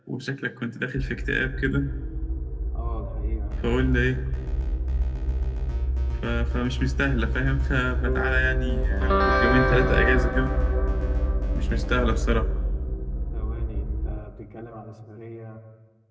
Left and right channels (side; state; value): both; identical; correlation 1.00